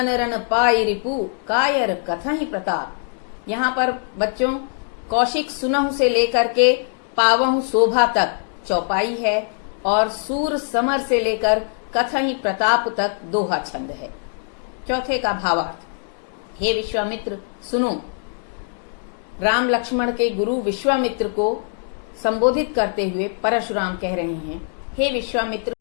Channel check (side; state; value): right; silent; 64 dB below the other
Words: रण पाई रिपु, कायर कथहि प्रताप। यहाँ पर बच्चों कौशिक सुनहु से लेकर के पावहु शोभा तक चौपाई है और सूर समर से लेकर कथहि प्रताप तक दोहा छंद है। चौथे का भावार्थ, हे विश्वामित्र सुनो। राम लक्ष्मण के गुरु विश्वामित्र को संबोधित करते हुए परशुराम कह रहे हैं, हे विश्वामित्र